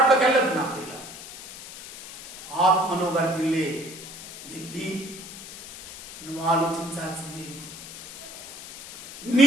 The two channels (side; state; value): left; noise; hiss, 14 dB below the sound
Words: వెళ్ళదు. నా ప్రియుల ఆత్మను వర్ధిల్లే విధి నువ్వు ఆలోచించాల్సింది ఏంటి?